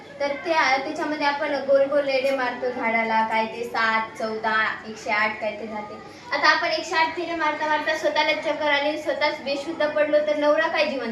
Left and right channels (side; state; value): both; identical; correlation 1.00